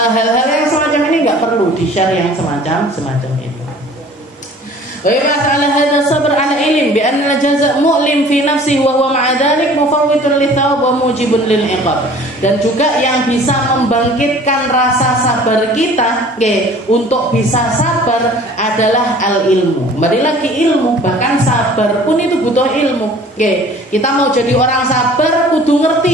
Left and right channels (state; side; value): normal; both; correlation 0.49